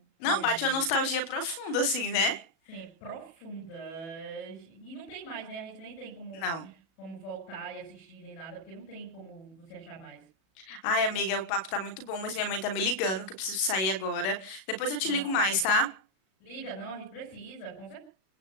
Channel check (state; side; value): late; right; 37 ms